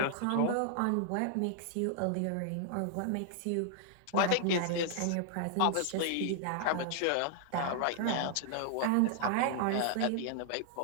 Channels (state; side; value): different; both; correlation -0.01